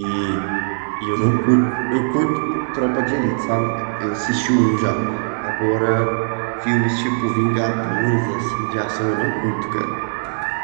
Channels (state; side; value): silent; left; digital silence